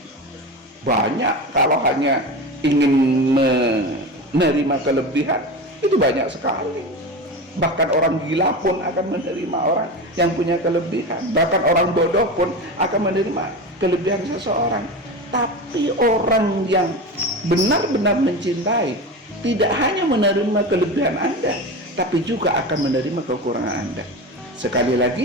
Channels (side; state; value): both; normal; correlation 0.25